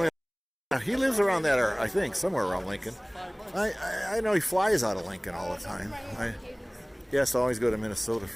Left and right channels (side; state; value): both; identical; correlation 1.00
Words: He lives around that, or I think somewhere around Lincoln. I know he flies out of Lincoln all the time. He has to always go to Minnesota